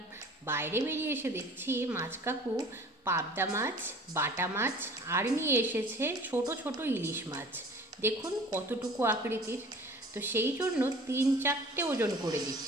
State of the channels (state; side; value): normal; both; correlation 0.46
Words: বাইরে বেরিয়ে এসে দেখছি মাছ কাকু পাবদা মাছ, বাটা মাছ আর নিয়ে এসেছে ছোট ছোট ইলিশ মাছ। দেখুন কতটুকু আকৃতির। তো সেই জন্য 3-4টে ওজন করে